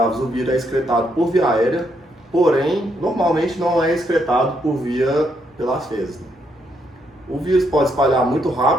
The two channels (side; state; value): both; normal; correlation 0.76